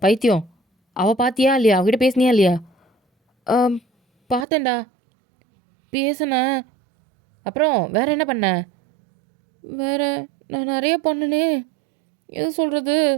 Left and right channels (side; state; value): left; drops out; at 4.5 s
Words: பைத்தியம், அவள் பார்த்தியா இல்லையா? அவகிட்ட பேசினியா இல்லையா? பார்த்தேன்டா, பேசினேன். அப்புறம் வேறு என்ன பண்ண? வேறு நான் நிறைய பொண்ணுனே, எது சொல்கிறது,